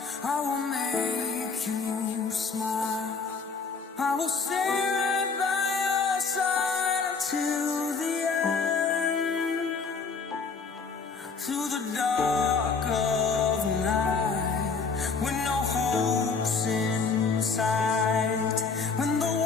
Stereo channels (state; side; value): quieter; right; 4.9 dB